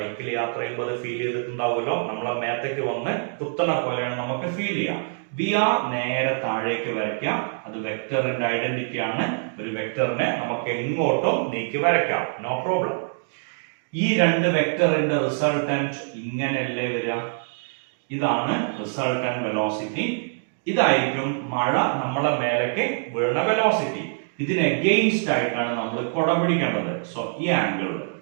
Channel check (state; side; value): silent; left; digital silence